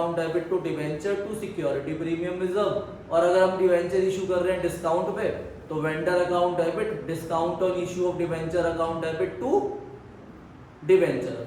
debit to debenture to security premium reserve. और अगर हम डिबेंचर इशू कर रहे हैं डिस्काउंट पे, तो vendor account debit discount on issue of debenture account debit to debenture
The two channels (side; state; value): both; identical; correlation 1.00